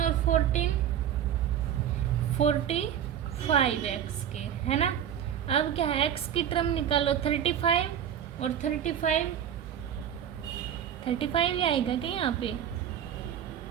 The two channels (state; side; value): quieter; left; 9.6 dB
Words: और 14 45x स्क्वायर है ना। अब क्या है x की टर्म निकालो 35 और 35 ही आएगा क्या यहाँ पे